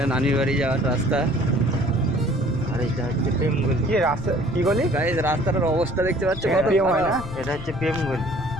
নানির বাড়ি যাওয়ার রাস্তা। আর এটা হচ্ছে প্রেমগলি। কি রাস্তা কি গলি গাইস রাস্তাটার অবস্থা দেখতে পাচ্ছ কত প্রেম হয় না? এটা হচ্ছে প্রেমগলি।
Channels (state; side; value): noise; left; rumble, 11 dB below the sound